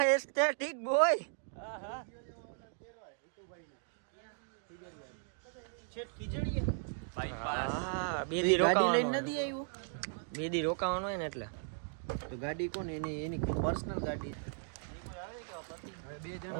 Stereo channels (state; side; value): silent; left; digital silence